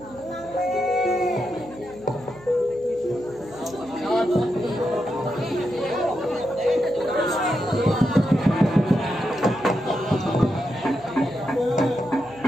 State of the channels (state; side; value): noise; right; hum, 22 dB below the sound